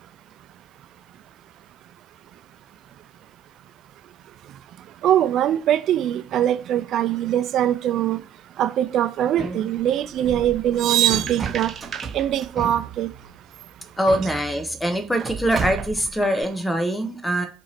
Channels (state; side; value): quieter; left; 6.7 dB